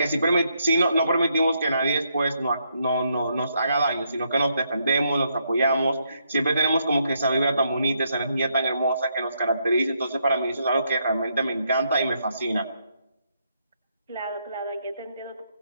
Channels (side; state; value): both; inverted; correlation -0.76